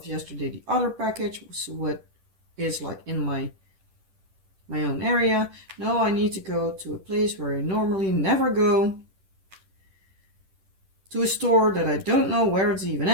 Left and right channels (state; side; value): late; left; 10 ms